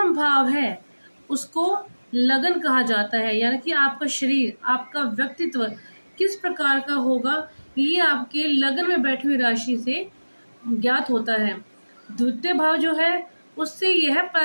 भाव है उसको लगन कहा जाता है, यानी कि आपका शरीर, आपका व्यक्तित्व किस प्रकार का होगा ये आपके लगन में बैठी हुई राशि से ज्ञात होता है। द्वितीय भाव जो है उससे यह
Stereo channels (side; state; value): both; inverted; correlation -1.00